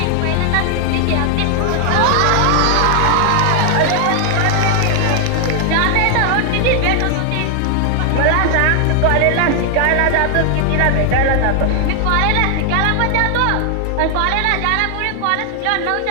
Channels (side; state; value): both; different; correlation 0.00